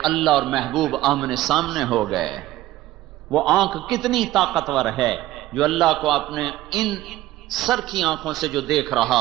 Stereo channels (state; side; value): quieter; left; 15.7 dB